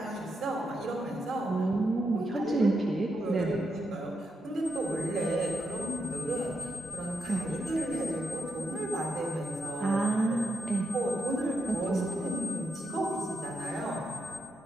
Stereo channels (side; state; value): both; normal; correlation 0.82